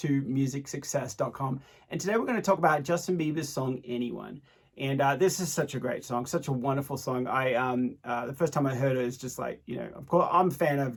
musicsuccess.com. And today we're going to talk about Justin Bieber's song, Anyone. And this is such a great song, such a wonderful song. The first time I heard it, it's just like, of course, I'm a fan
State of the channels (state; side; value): identical; both; correlation 1.00